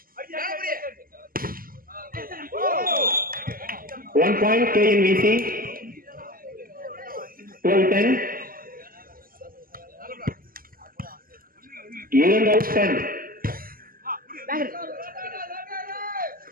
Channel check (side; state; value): left; late; 0.42 ms